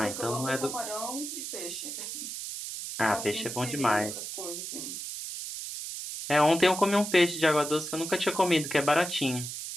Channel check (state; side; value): noise; right; hiss, 7 dB below the sound